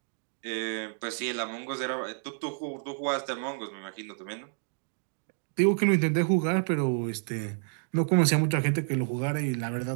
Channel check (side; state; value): left; silent; digital silence